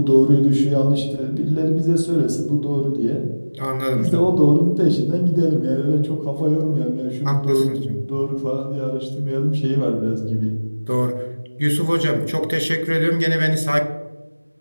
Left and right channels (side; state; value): both; inverted; correlation -1.00